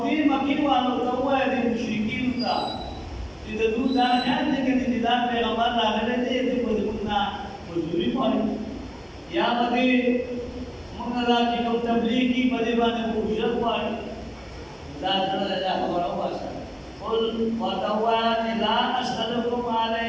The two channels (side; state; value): both; identical; correlation 1.00